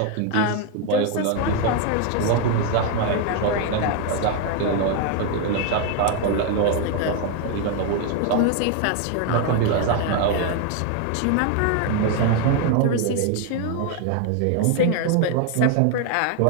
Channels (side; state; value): both; different; correlation 0.01